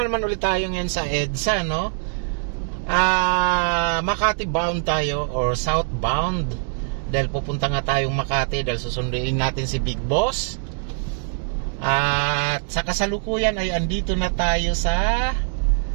naman ulit tayo ngayon sa EDSA, no? Makati bound tayo or southbound. Dahil pupunta nga tayong Makati dahil susunduin natin si Big Boss. At sa kasalukuyan ay andito na tayo sa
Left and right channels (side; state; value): left; silent; digital silence